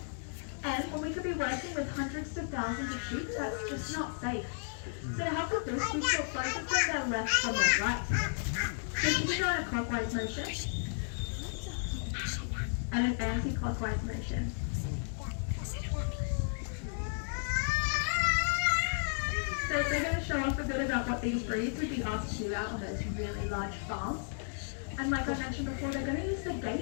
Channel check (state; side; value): silent; right; digital silence